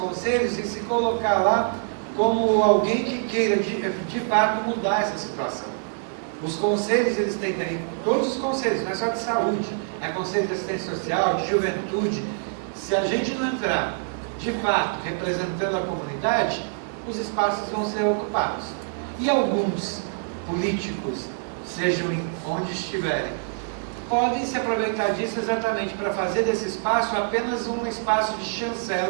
e se colocar lá como alguém que queira de fato mudar essa situação. Os conselhos, eles têm todos os conselhos, não é só de saúde, é conselho de assistência social, de juventude. Se a gente não entrar de fato representando a comunidade, os espaços vão ser ocupados. E alguns políticos, sejam onde estiverem, podem se aproveitar disso exatamente para fazer desse espaço apenas um espaço de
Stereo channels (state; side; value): silent; left; 62 dB below the other